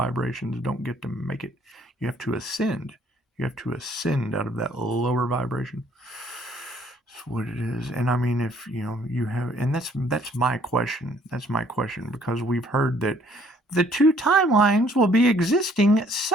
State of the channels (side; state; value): both; normal; correlation 0.61